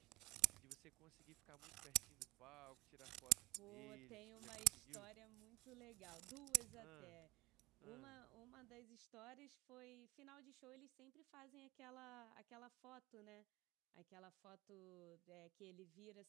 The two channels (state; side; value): quieter; left; 20.6 dB